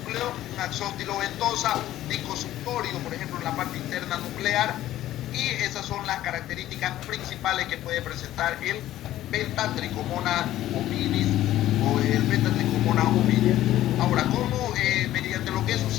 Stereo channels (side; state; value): right; quieter; 13.9 dB